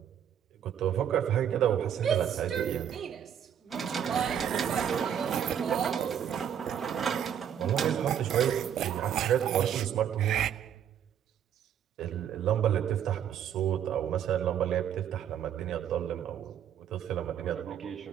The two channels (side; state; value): left; quieter; 9.2 dB